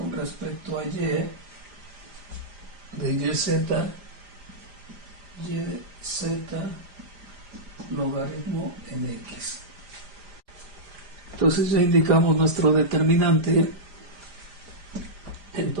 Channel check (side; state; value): left; late; 5.0 ms